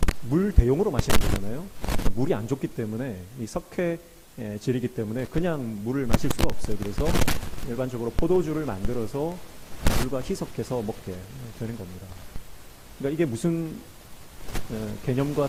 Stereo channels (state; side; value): identical; both; correlation 1.00